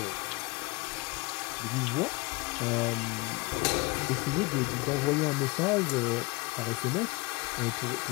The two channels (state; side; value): quieter; right; 25.8 dB